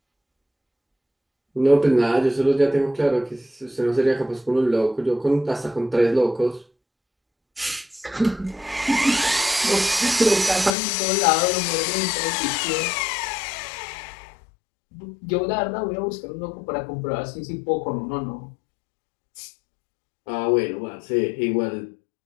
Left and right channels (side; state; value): right; drops out; at 10.7 s